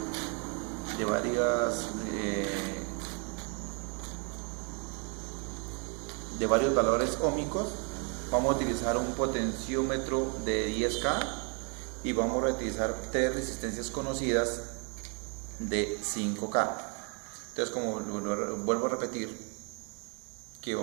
de varios valores óhmicos. Vamos a utilizar un potenciómetro de 10K y vamos a utilizar tres resistencias conocidas de 5K. Entonces, como vuelvo a repetir, ¿qué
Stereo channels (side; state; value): left; quieter; 36.9 dB